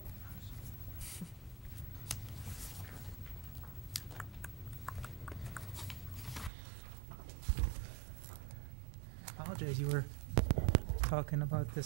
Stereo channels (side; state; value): left; drops out; at 6.5 s